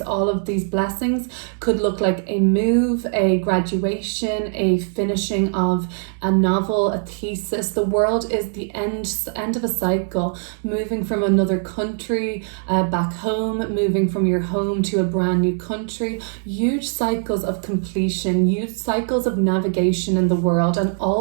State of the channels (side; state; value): left; silent; 63 dB below the other